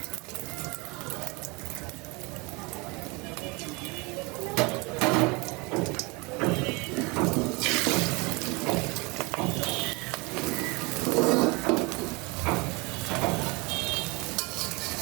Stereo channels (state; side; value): quieter; left; 27.0 dB